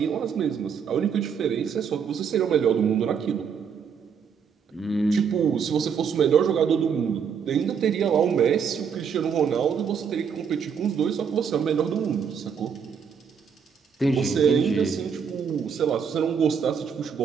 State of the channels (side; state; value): left; quieter; 6.9 dB